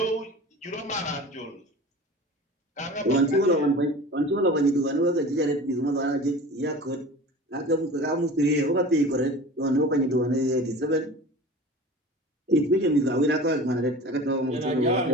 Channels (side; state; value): both; normal; correlation 0.37